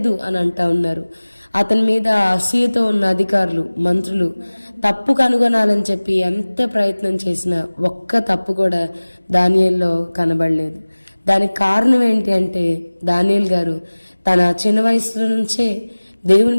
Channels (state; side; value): inverted; both; correlation -1.00